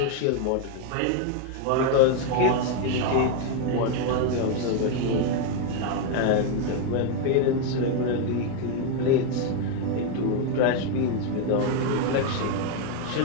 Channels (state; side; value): different; both; correlation 0.01